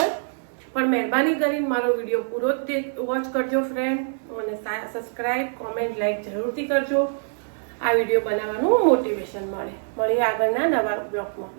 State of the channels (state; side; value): silent; left; digital silence